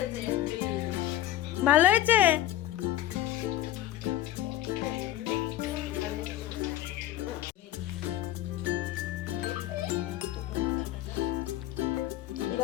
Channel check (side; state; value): right; quieter; 13.4 dB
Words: এমপি। ভালো হয়েছে?